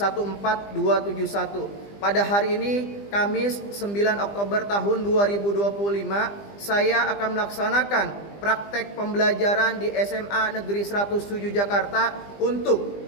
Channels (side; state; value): right; late; 20 ms